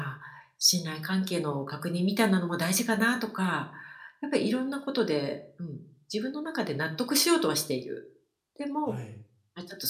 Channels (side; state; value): both; identical; correlation 1.00